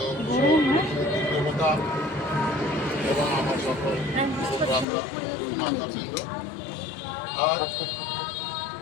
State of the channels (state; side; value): drops out; right; at 4.9 s